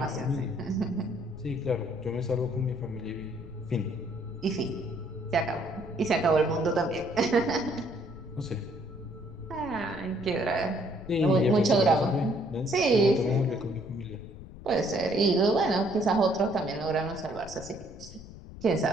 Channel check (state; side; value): noise; left; rumble, 16 dB below the sound